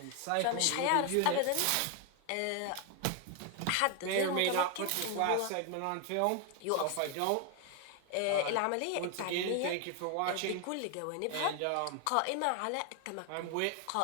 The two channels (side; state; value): both; different; correlation 0.01